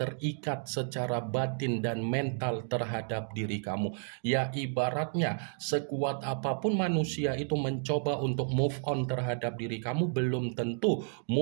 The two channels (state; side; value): silent; left; 57 dB below the other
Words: secara batin dan mental terhadap diri kamu. Ya ibaratnya sekuat apapun manusia itu mencoba untuk move on terhadap diri kamu, belum tentu